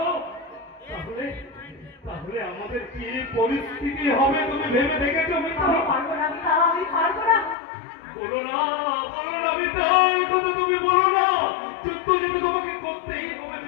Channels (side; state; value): right; drops out; at 7.6 s